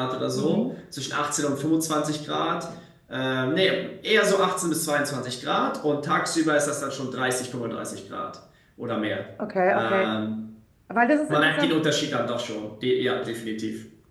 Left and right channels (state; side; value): identical; both; correlation 1.00